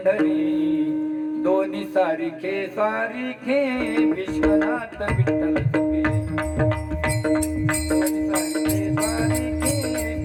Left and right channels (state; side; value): identical; both; correlation 1.00